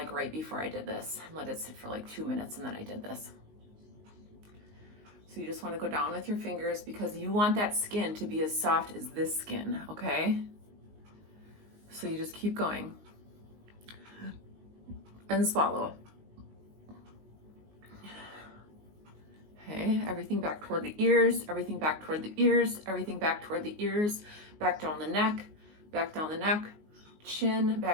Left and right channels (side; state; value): left; late; 19 ms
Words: right before I did this. Let it sit for like 2 minutes, and then I did this. So you just want to go down with your fingers because you want that skin to be as soft as this skin, okay? So you just keep going. And swallow. Okay, everything back toward the ears, everything back toward the ears, everything back toward the ears, back down the neck, chin,